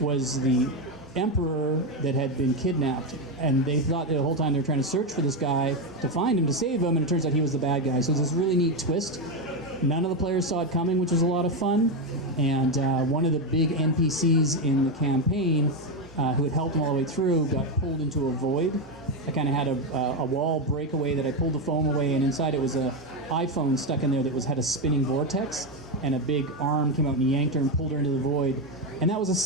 the emperor that had been kidnapped, and they thought the whole time they were trying to search for this guy to find him, to save him, and it turns out he was the bad guy. So it was this really neat twist. None of the players saw it coming, which was a lot of fun. And one of the big NPCs in the campaign, who had helped him all the way through, got pulled into a void. I kind of had a wall breakaway that I pulled the foam away, and inside it was a iPhone stuck in there that had a spinning vortex, and a big arm came out and yanked her and pulled her into the void. And that was a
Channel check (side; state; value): both; normal; correlation 0.09